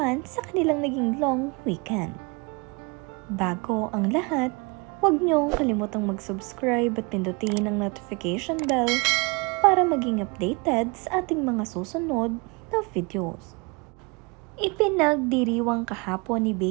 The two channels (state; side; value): quieter; left; 29.4 dB